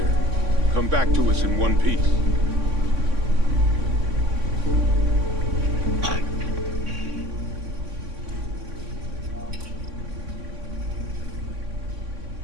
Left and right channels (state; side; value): late; left; 3.6 ms